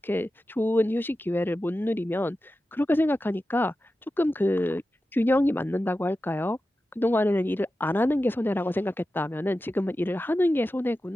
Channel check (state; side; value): normal; both; correlation 0.93